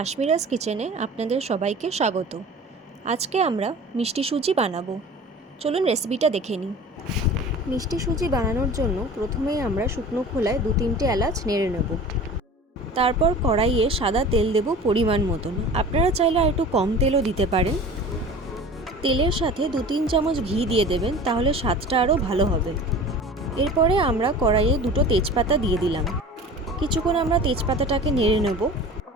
কিচেনে আপনাদের সবাইকে স্বাগত। আজকে আমরা মিষ্টি সুজি বানাবো। চলুন রেসিপিটা দেখে নিই। মিষ্টি সুজি বানানোর জন্য প্রথমেই আমরা শুকনো খোলায় 2-3টে এলাচ নেড়ে নেব। তারপর কড়াইয়ে সাদা তেল দেব পরিমাণ মতন। আপনারা চাইলে আর একটু কম তেলও দিতে পারেন। তেলের সাথে 2-3 চামচ ঘি দিয়ে দেবেন, তাহলে স্বাদটা আরও ভালো হবে। এরপরে আমরা কড়াইয়ে 2টো তেজপাতা দিয়ে দিলাম। কিছুক্ষণ আমরা তেজপাতাটাকে নেড়ে নেব।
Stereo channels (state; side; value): normal; both; correlation 0.39